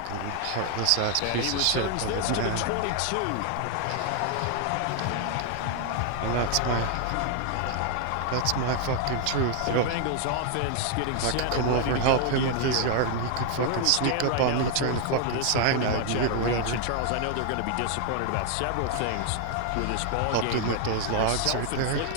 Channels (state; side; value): different; both; correlation 0.00